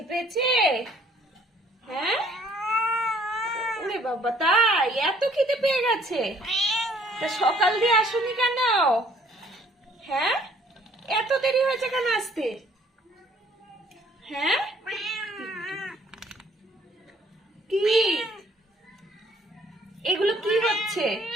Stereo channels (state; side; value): normal; both; correlation 0.60